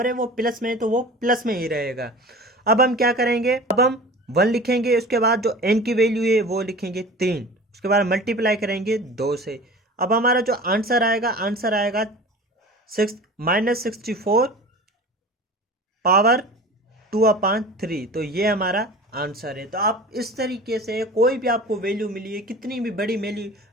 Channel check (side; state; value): both; normal; correlation 0.38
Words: है वो प्लस में है तो वो प्लस में ही रहेगा। अब हम क्या करेंगे, अब हम 1 लिखेंगे, उसके बाद जो n की वैल्यू है वो लिखेंगे 3, उसके बाद मल्टीप्लाई करेंगे 2 से। अब हमारा जो आंसर आएगा -64 पावर 2/3। तो ये हमारा आंसर है। तो आप इस तरीके से कोई भी आपको वैल्यू मिली है, कितनी भी बड़ी